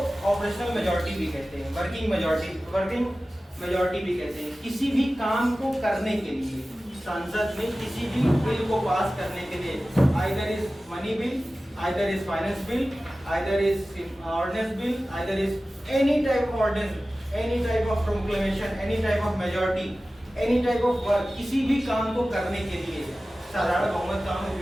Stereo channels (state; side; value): normal; both; correlation 0.96